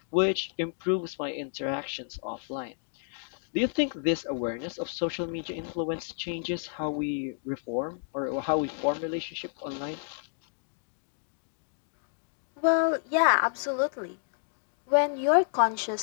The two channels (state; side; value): silent; right; digital silence